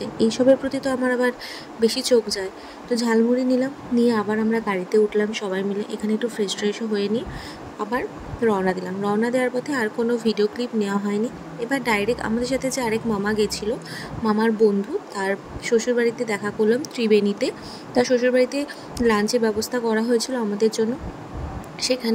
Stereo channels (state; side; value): identical; both; correlation 1.00